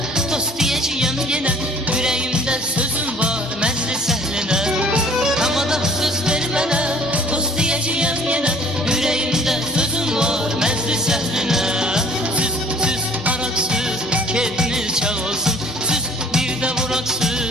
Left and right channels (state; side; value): normal; both; correlation 0.54